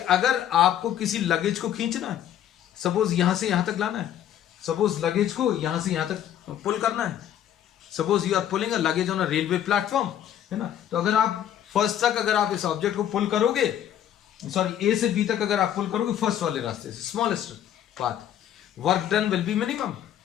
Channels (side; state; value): right; quieter; 10.7 dB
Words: आपको किसी लगेज को खींचना है, सपोज यहां से यहां तक लाना है, सपोज लगेज को यहां से यहां तक पुल करना है, suppose you are pulling a luggage on a railway platform, है ना. तो अगर आप फर्स्ट तक अगर आप इस ऑब्जेक्ट को पुल करोगे, सॉरी ए से बी तक अगर आप पुल करोगे फर्स्ट वाले रास्ते से, smallest path, work done will be minimum.